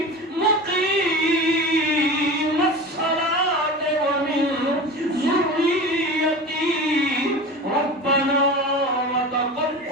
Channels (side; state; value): both; normal; correlation 0.32